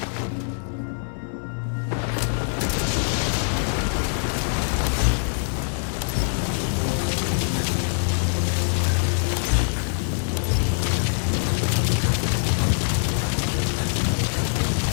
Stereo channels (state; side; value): silent; right; 63 dB below the other